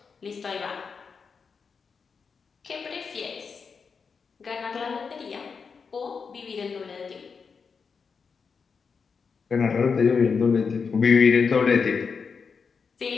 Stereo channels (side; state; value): right; quieter; 5.5 dB